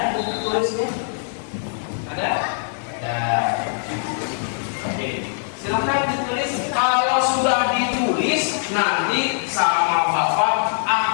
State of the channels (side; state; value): right; silent; digital silence